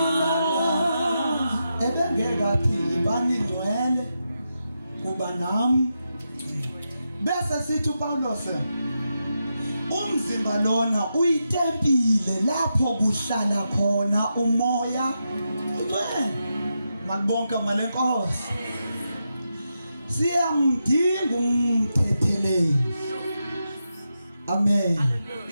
ebengekathi ibani ngcwele kuba nami bese sithi uPaulos umzimba lona uyitempile lapho kuhlala khona umoya ngcwele. Malibonke malenkosi. Siyamdinga umthetheleli. Amen.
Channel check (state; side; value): inverted; both; correlation -0.87